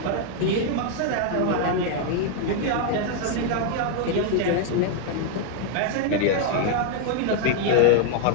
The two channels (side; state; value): both; different; correlation 0.00